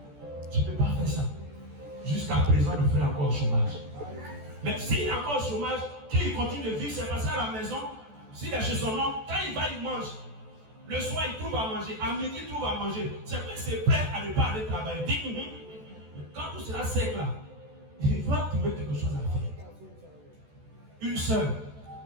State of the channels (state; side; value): late; left; 14 ms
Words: Je ne peux pas faire ça. Jusqu'à présent, le frère est encore au chômage. Mais s'il est encore au chômage, qu'il continue de vivre, c'est parce qu'à la maison, s'il est chez son oncle, quand il va, il mange. Le soir, il trouve à manger. À midi, il trouve à manger. C'est vrai, c'est prêt à ne pas aller travailler. Dis, quand tout sera sec là, il va trouver quelque chose à faire. Une sœur,